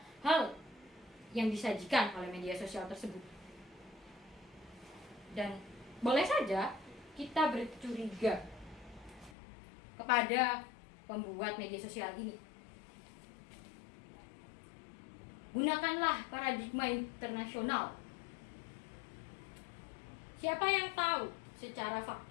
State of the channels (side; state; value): right; drops out; at 9.3 s